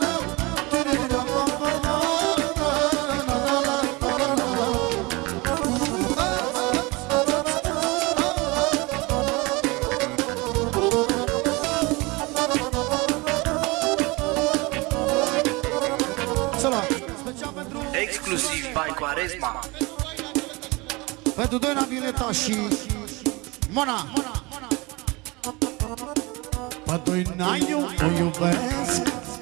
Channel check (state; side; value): quieter; left; 24.7 dB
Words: Exclusiv by Quaresma. Pentru Doina Violeta și Mona. Pe Doina eu o iubesc,